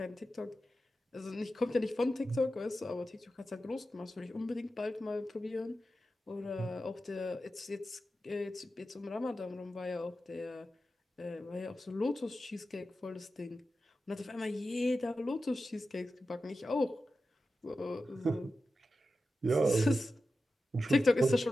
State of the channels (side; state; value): both; normal; correlation 0.92